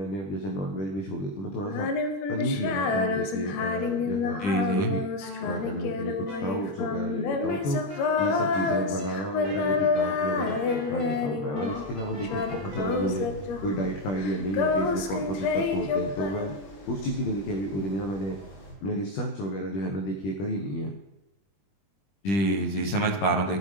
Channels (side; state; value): right; late; 21 ms